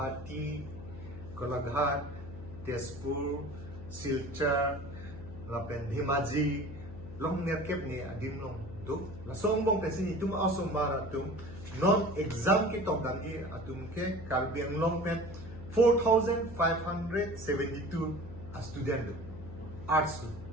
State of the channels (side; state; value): left; noise; hum, 12 dB below the sound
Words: Golaghat, Tezpur, Silchar, lapen Dhemaji, long nerkep ni adim long do. Lasong mong kasi itum asong maratum non exam ki tok dangi atum ke Caribbean long pen 4,572 a student do. Arts do.